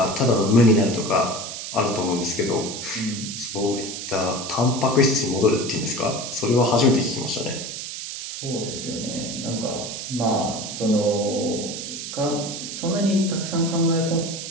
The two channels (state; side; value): noise; right; hiss, 7 dB below the sound